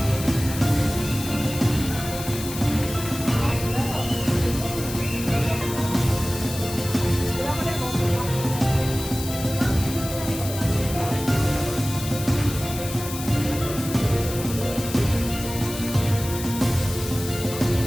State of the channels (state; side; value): noise; left; hiss, 10 dB below the sound